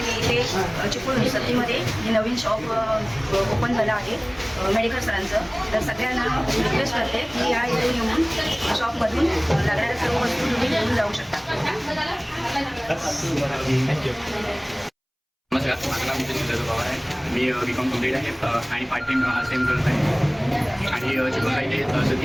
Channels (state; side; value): identical; both; correlation 1.00